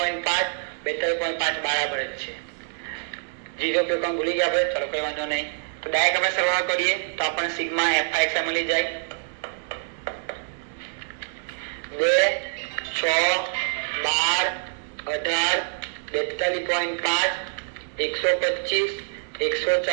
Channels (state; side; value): silent; left; digital silence